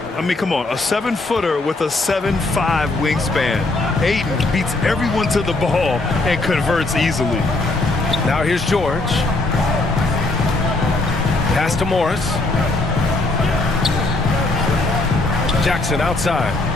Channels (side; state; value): right; quieter; 3.0 dB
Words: I mean, come on, a 7-footer with a 7'5" wingspan. Ayton beats everyone to the ball and converts easily. Now here's George. Pass to Morris. Jackson outside.